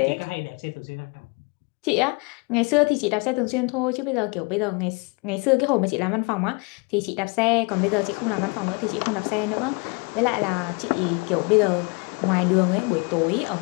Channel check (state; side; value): quieter; right; 30.3 dB